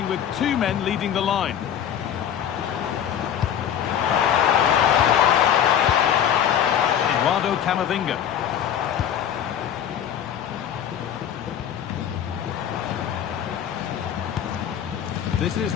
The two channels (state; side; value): quieter; right; 9.5 dB